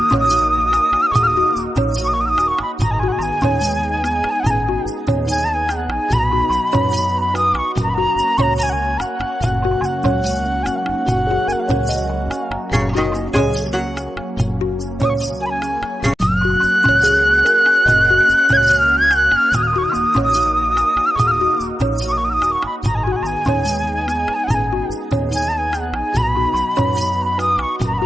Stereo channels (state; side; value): normal; both; correlation 0.91